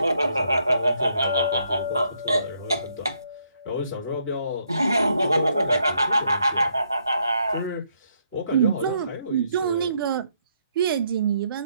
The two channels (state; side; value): inverted; both; correlation -0.73